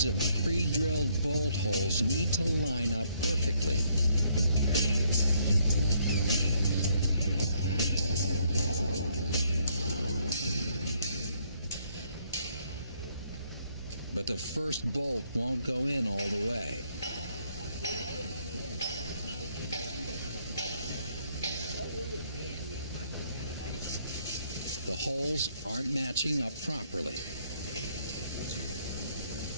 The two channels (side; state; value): both; inverted; correlation -0.69